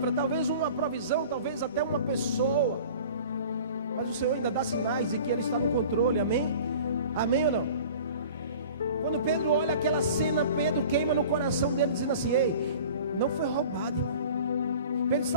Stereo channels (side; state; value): both; inverted; correlation -0.44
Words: talvez uma provisão, talvez até uma pessoa, mas o Senhor ainda dá sinais de que Ele está no controle. Amém? Amém ou não? Quando Pedro olha aquela cena, Pedro queima no coração dele, dizendo assim: ei, não foi roubado, irmão. Pedro